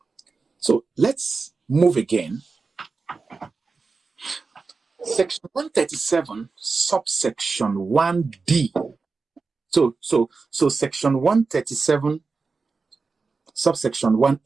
So let's move again. Section 137, subsection 1D. So section 137, subsection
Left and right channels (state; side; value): quieter; left; 4.3 dB